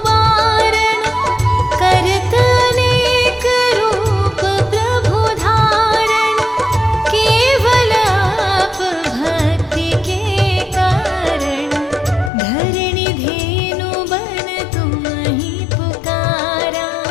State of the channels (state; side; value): drops out; right; at 12.3 s